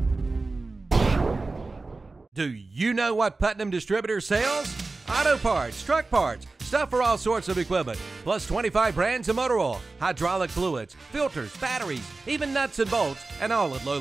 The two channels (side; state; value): left; quieter; 3.5 dB